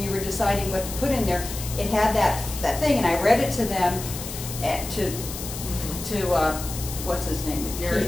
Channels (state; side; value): noise; left; hiss, 9 dB below the sound